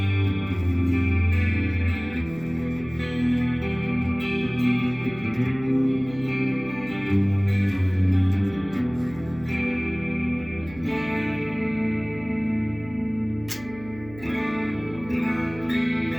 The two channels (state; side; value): noise; right; hum, 18 dB below the sound